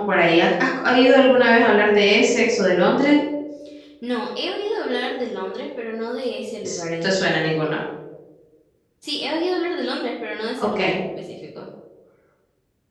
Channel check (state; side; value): identical; both; correlation 1.00